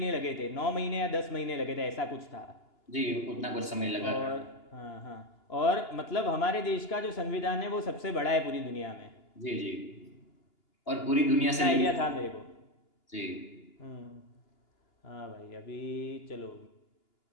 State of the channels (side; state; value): right; late; 2.9 ms